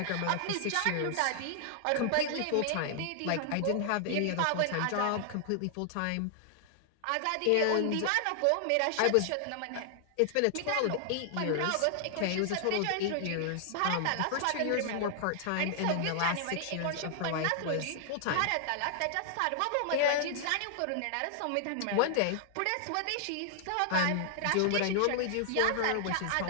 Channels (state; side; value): different; both; correlation -0.01